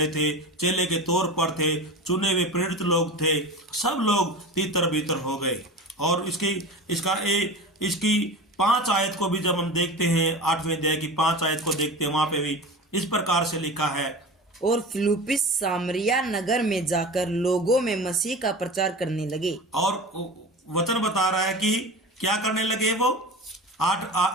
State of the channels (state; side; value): normal; both; correlation 0.31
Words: थे, चेले के तौर पर थे, चुने हुए प्रेरित लोग थे, सब लोग तीतर बीतर हो गए। और इसकी 5 आयत को भी जब हम देखते हैं, 8वें अध्याय की 5 आयत को देखते हैं, वहां पे भी इस प्रकार से लिखा है, और फिलिप्पुस सामरिया नगर में जाकर लोगों में मसीह का प्रचार करने लगे। और वचन बता रहा है कि क्या करने लगे वो